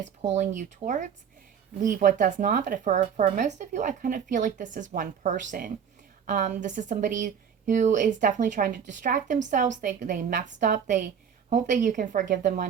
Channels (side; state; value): left; quieter; 7.7 dB